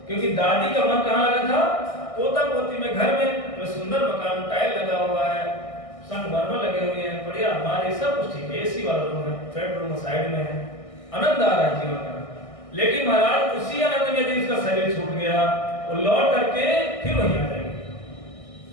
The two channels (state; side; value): late; right; 1.6 ms